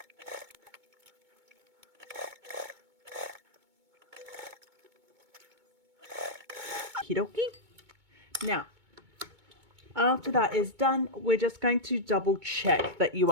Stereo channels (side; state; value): left; late; 2.2 ms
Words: Okie dokie. Now, after that is done, we're just going to double check that you